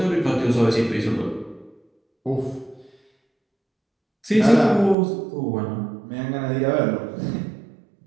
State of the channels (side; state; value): left; drops out; at 5.0 s